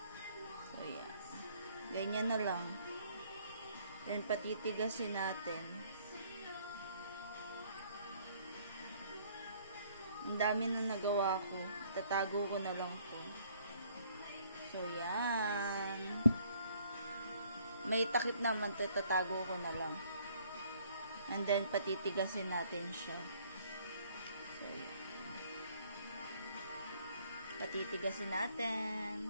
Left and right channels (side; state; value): both; inverted; correlation -0.62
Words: So, yan. Ganyan na lang. Then, patitigasin natin. Ang dami na nagawa ko. Tatago ko na lang to. So, yan. May takip naman to. Tatago ko na lang. And then, patitigasin natin siya. So, yan. Patitigasin